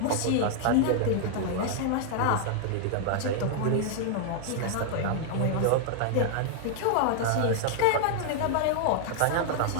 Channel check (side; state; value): both; different; correlation 0.00